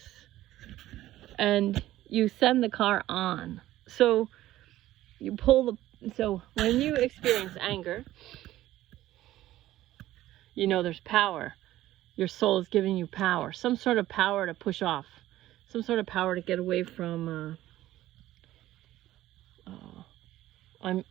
and you send the car on. So when you experience anger, there's power. Your soul is giving you power, some sort of power to push off, some sort of power to get away from. I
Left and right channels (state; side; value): quieter; left; 14.8 dB